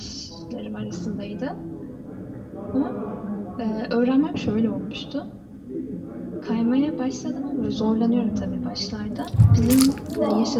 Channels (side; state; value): both; identical; correlation 1.00